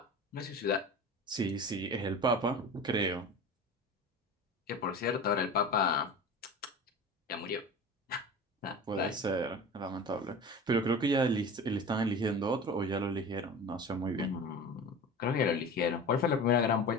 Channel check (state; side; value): normal; both; correlation 0.33